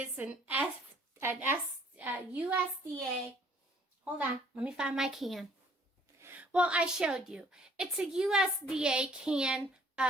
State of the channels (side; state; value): both; normal; correlation 0.58